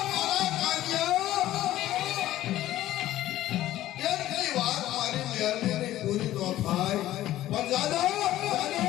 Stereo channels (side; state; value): right; quieter; 14.3 dB